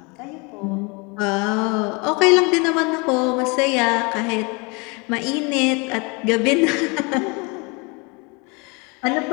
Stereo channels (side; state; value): right; quieter; 29.5 dB